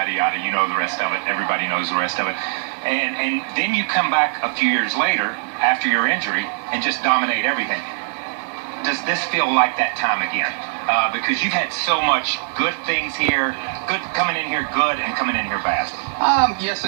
yada. You know the rest of it. Everybody knows the rest of it. And then you come back a few years later after your injury and just dominate everything. Does this feel like that time again? Because you've had so much good things here, good coming in here good and coming in here bad. Yes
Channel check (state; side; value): silent; left; digital silence